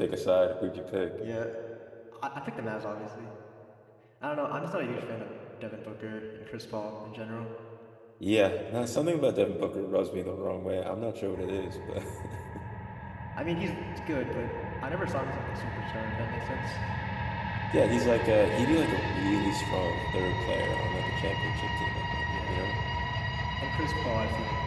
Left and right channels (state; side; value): identical; both; correlation 1.00